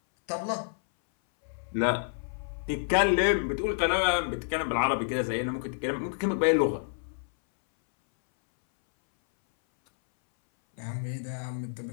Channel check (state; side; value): silent; right; 59 dB below the other